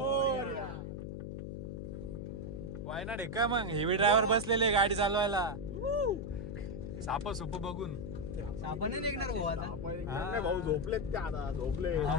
वायनाड आहे का मग? हेवी ड्रायव्हर बसलेले गाडी चालवायला, साप सुप बघून आपण निघणार भाऊ आता। भाऊ झोपलेत ते, आता झोपले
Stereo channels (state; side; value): noise; left; hum, 6 dB below the sound